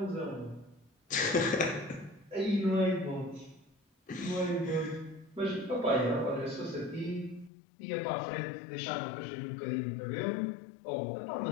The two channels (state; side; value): drops out; right; at 7.5 s